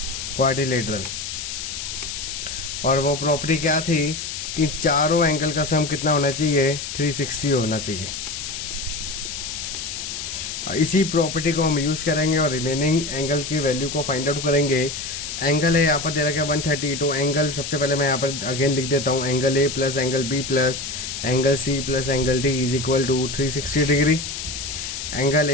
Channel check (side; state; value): left; noise; hiss, 6 dB below the sound